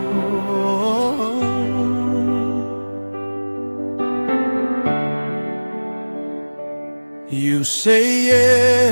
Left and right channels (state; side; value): inverted; both; correlation -1.00